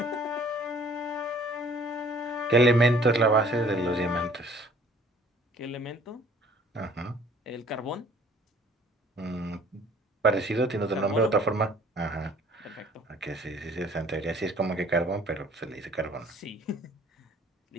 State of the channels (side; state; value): both; normal; correlation 0.54